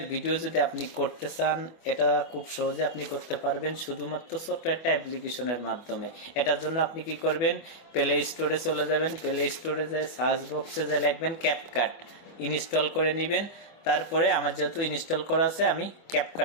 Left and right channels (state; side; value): late; right; 25 ms